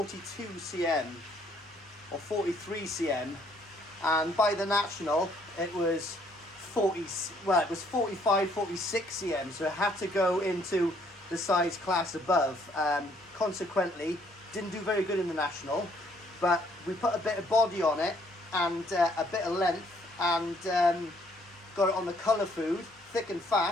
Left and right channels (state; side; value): normal; both; correlation 0.66